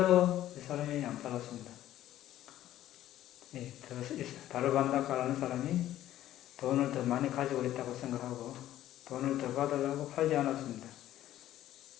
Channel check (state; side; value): quieter; right; 13.2 dB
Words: 이 사람이 안 팔았습니다. 다르반다카라는 사람이 돈을 더 많이 가지고 있다고 생각하고 돈을 더 받으려고 팔지 않았습니다.